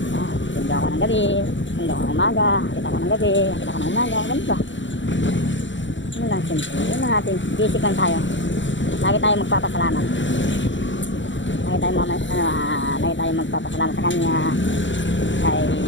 Sundo ako ng gabi, sundo ako ng umaga, akit ako ng gabi, akit ako ng umaga, ganun ba? Ano lang, simple yun ang ating basic lang tayo. Lagi tayo magpapasalamat. Lagi tayo magpapasalamat sa kanya, kay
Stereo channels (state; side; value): late; right; 0.54 ms